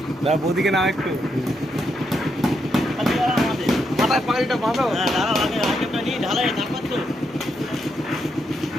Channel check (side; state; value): both; normal; correlation 0.80